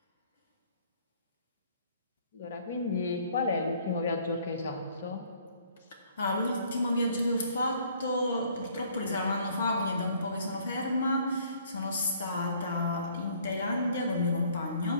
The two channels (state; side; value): inverted; both; correlation -0.60